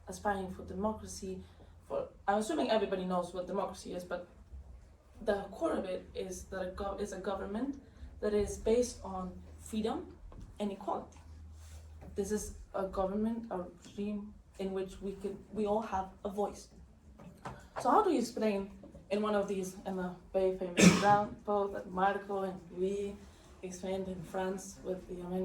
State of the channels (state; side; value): identical; both; correlation 1.00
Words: aspiring for democracy. I'm assuming everybody knows what democracy is, but the core of it is that it's a government that is based on freedom and equality. This is a government, a regime in which we all have a voice. So how do you explain in one of these, in the very famous example that Marco and Louis explained in France with the